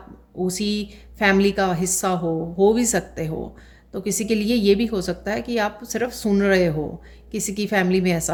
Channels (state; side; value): identical; both; correlation 1.00